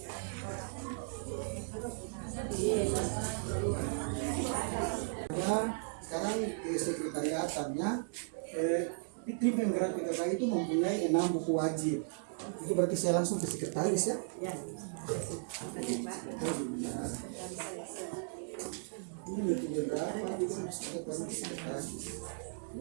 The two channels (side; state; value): left; silent; digital silence